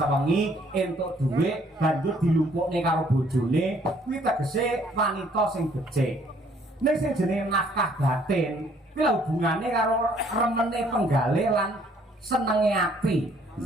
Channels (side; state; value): both; normal; correlation 0.62